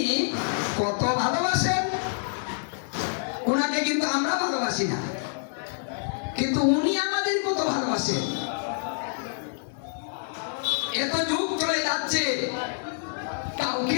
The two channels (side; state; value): right; silent; digital silence